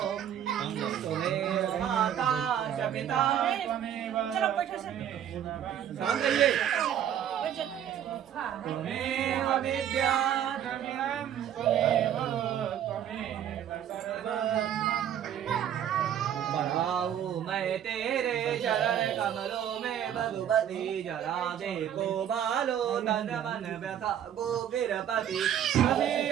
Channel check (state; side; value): quieter; left; 9.9 dB